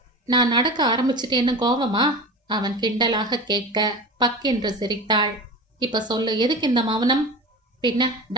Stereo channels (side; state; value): both; normal; correlation 0.30